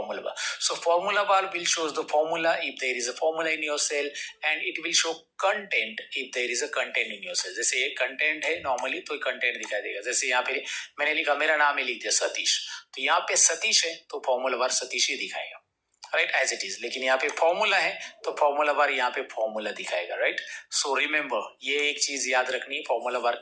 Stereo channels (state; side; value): identical; both; correlation 1.00